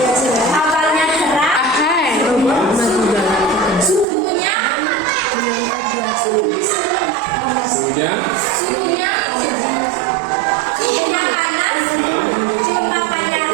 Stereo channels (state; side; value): drops out; left; at 4.0 s